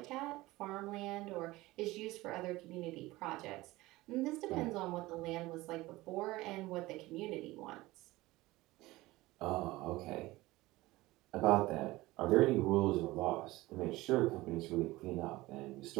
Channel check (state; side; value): quieter; left; 19.2 dB